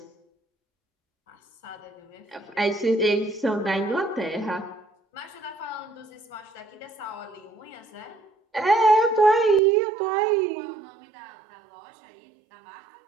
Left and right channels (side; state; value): left; drops out; at 9.6 s